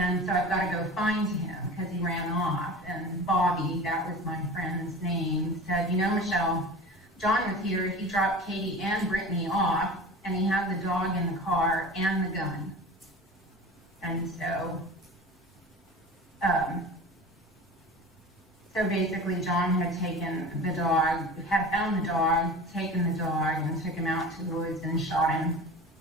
so I've got to go find him because he ran off. And Bobby, that was my friend's name, said, Michelle, John was here. He dropped Katie and Brittany off, and he had the dog in the car and the gun. And so, so basically John had taken the dog, had found the dog, taken the dog, and took him out to the woods and shot him.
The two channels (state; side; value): normal; both; correlation 0.35